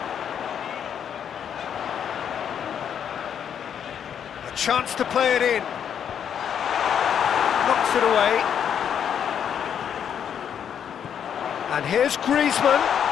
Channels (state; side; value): quieter; right; 8.5 dB